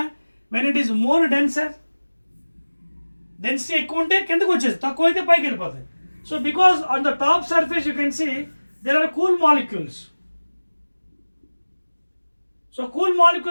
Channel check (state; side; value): inverted; both; correlation -1.00